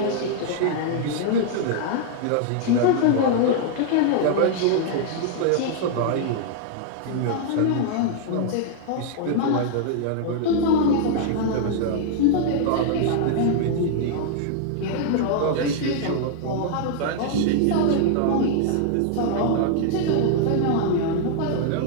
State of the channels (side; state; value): both; different; correlation -0.01